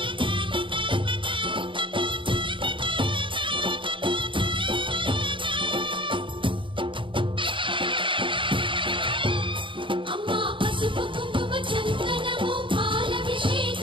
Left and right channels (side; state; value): left; late; 0.24 ms